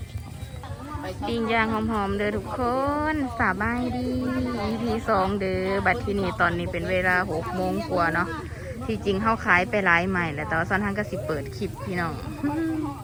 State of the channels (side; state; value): both; identical; correlation 1.00